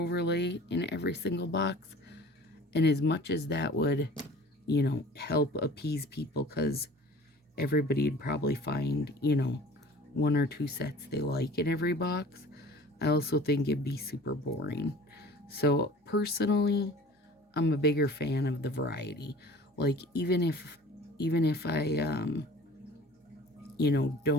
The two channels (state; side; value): normal; both; correlation 0.45